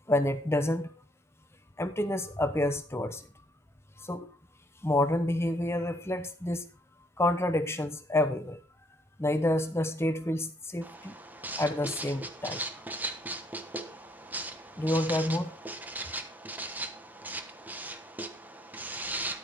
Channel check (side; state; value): both; normal; correlation 0.68